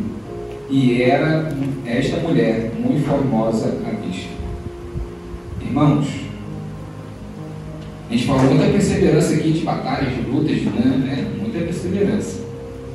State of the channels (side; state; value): both; identical; correlation 1.00